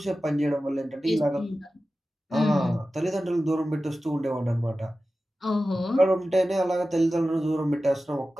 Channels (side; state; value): both; normal; correlation 0.94